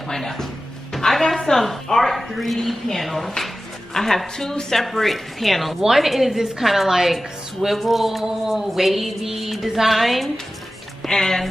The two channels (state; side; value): normal; both; correlation 0.95